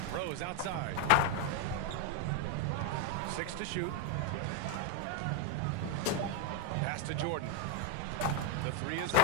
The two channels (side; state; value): both; different; correlation 0.01